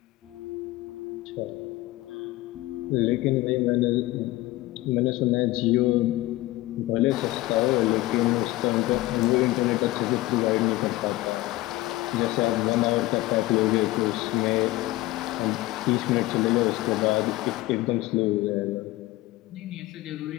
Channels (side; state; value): right; quieter; 18.2 dB